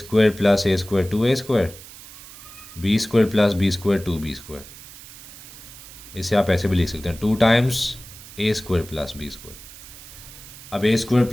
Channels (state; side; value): noise; right; hiss, 17 dB below the sound